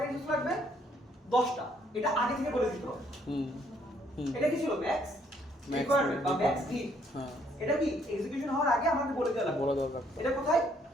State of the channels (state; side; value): normal; both; correlation 0.67